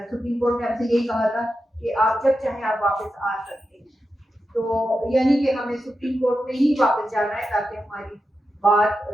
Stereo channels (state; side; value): normal; both; correlation 0.89